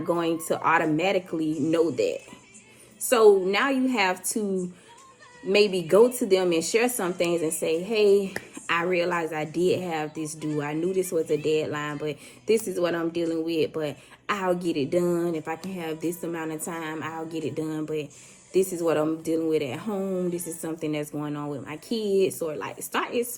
going to automatically know that. So now you have to maybe go to them and share some things and say, hey, I realized I did have this due. I knew this was a deadline, but this is what I'm dealing with. But I'll get it done. If I can have this amount of time, I'll get it done. But this is what I'm dealing with at home. This is something that's going on with my kids. Or like, start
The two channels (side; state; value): both; identical; correlation 1.00